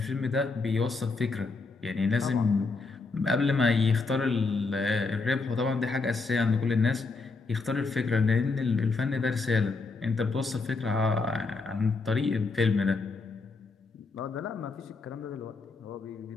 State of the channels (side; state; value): right; quieter; 4.0 dB